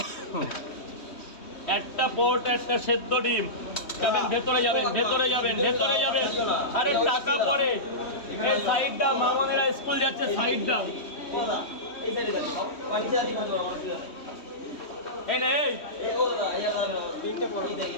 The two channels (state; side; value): late; right; 3.1 ms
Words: একটা পরোটা একটা সেদ্ধ ডিম। যাবেন ভেতরে, যাবেন ভেতরে, যাবেন ভেতরে, যাবেন। আরে টাকা পরে, এই সাইড দাম, মামনেরা স্কুল যাচ্ছে, সাইড দাম। এই নে, এই